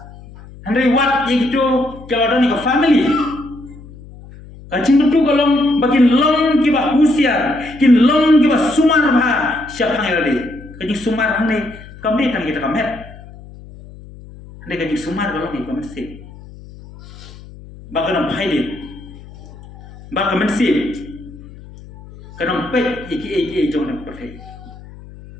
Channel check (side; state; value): left; noise; hum, 18 dB below the sound